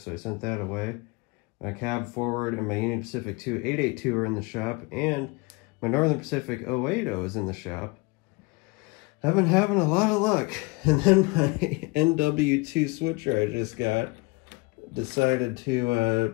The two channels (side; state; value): right; quieter; 26.2 dB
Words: I sent that away. My cab forward and my Union Pacific 882 are in the shop, and my Northern Pacific 080 is in the shop. I've been having a lot of luck. And then my NW2 switcher I just got decided